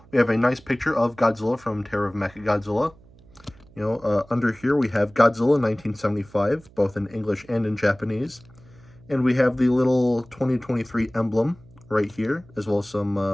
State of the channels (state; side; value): noise; right; hum, 26 dB below the sound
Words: we have a nice picture of Godzilla from Terror of Mechagodzilla. Under here we have Godzilla 1975, both in English and in Japanese. And we have the little 2023 emblem right here, as well as some